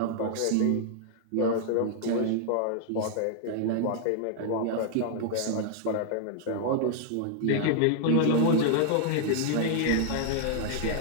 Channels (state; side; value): different; both; correlation -0.01